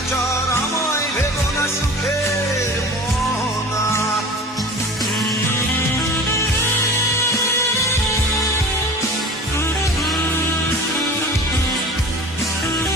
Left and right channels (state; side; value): normal; both; correlation 0.39